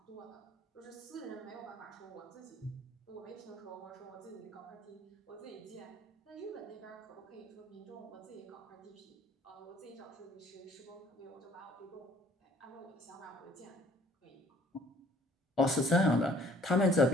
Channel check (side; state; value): both; normal; correlation 0.57